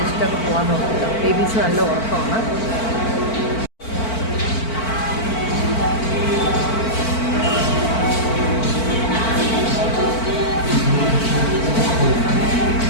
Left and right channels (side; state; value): right; late; 4.5 ms